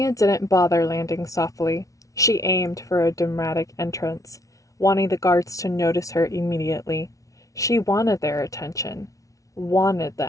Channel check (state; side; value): late; right; 0.16 ms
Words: didn't bother landing softly. She aimed for a dramatic entrance, wanting the guards to notice her immediately. She wanted their attention, wanted